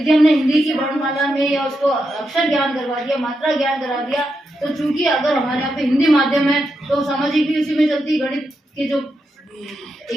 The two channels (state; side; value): normal; both; correlation 0.85